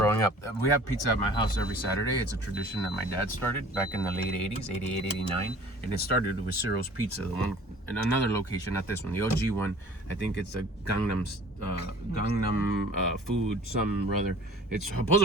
up. We have pizza at my house every Saturday. It's a tradition that my dad started back in the late 80s, 88, 89. And it started with Ciro's Pizza, the one in another location, not this one, the OG one. I think it's a Gangnam food, some rather. It's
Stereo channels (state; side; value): normal; both; correlation 0.48